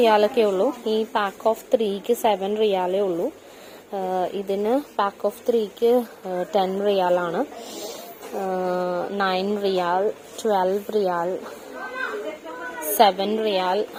ഉള്ളൂ. ഈ പാക്ക് ഓഫ് 3ക്ക് 7 റിയാലേ ഉള്ളൂ. ഇതിന് പാക്ക് ഓഫ് 3ക്ക് 10 റിയാലാണ്. 9 റിയാൽ, 12 റിയാൽ, 7 റിയാൽ,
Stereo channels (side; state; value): both; identical; correlation 1.00